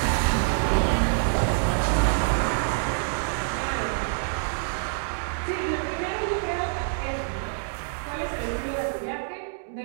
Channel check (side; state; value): left; silent; digital silence